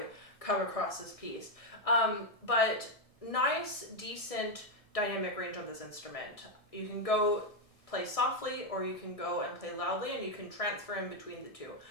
come across this piece. But nice, decent dynamic range on this instrument. You can go play softly, or you can go and play loudly, and you can transfer in between the two.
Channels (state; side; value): late; right; 1.6 ms